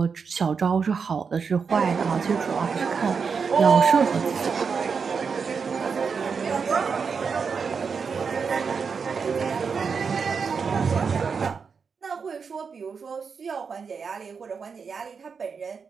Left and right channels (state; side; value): quieter; left; 5.7 dB